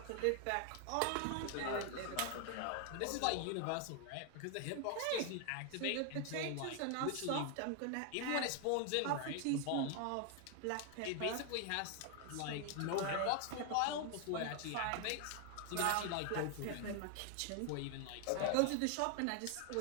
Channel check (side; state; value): both; different; correlation 0.00